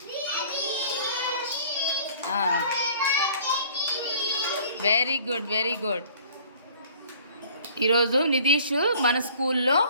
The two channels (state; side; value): inverted; both; correlation -0.52